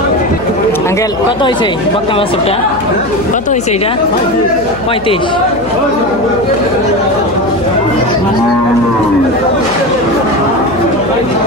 আঙ্কেল কত হয়েছে বকনা বাছুরটা? কত হয়েছে এটা? 35।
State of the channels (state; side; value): noise; left; hum, 17 dB below the sound